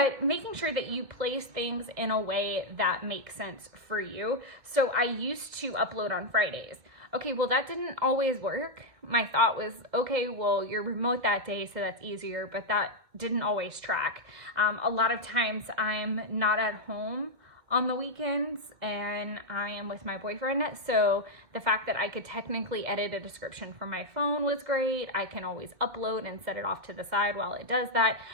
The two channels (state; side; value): late; left; 2.4 ms